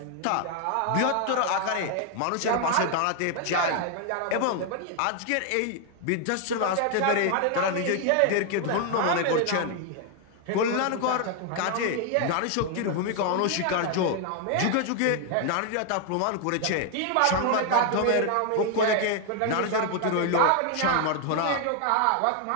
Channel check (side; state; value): both; different; correlation 0.01